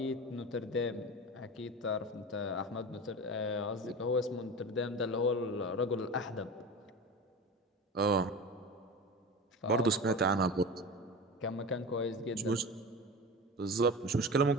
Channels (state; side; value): normal; both; correlation 0.30